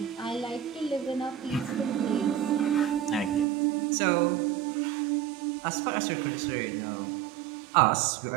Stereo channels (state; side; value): drops out; left; at 3.5 s